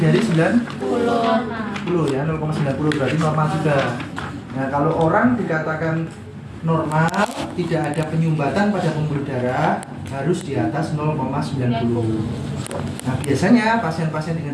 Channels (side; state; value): both; identical; correlation 1.00